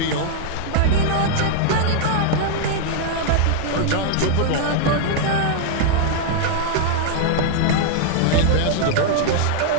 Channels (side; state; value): both; different; correlation -0.01